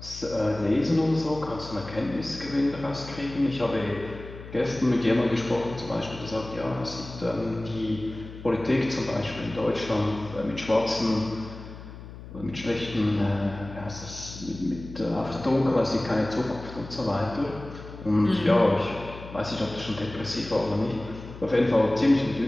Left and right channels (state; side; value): noise; left; hum, 14 dB below the sound